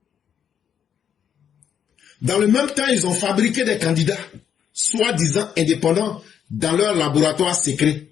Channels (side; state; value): right; quieter; 8.5 dB